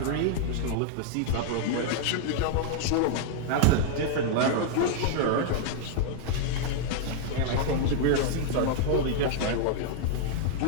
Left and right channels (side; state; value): both; different; correlation -0.01